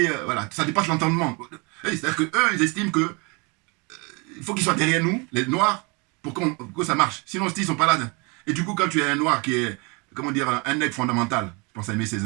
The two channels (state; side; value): quieter; left; 30.0 dB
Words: voilà, ça dépasse l'entendement. C'est-à-dire qu'eux, ils estiment que il faut qu'ils soient derrière nous, les Noirs, pour que ça marche. Sinon, ils ne sont pas là. Et du coup, quand tu es un Noir qui est, comment dire, un nègre fondamental, je pense à Aimé